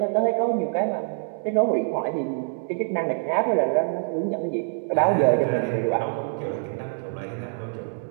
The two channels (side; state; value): left; silent; digital silence